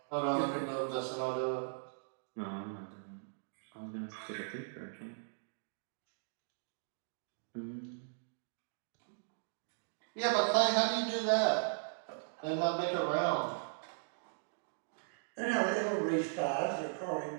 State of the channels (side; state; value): left; silent; digital silence